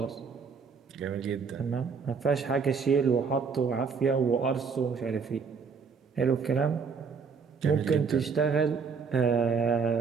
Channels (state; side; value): quieter; left; 5.5 dB